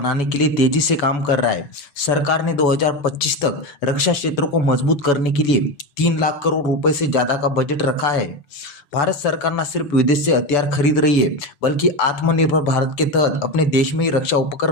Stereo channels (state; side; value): late; right; 7.0 ms